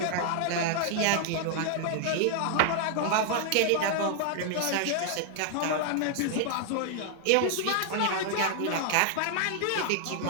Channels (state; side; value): different; both; correlation 0.00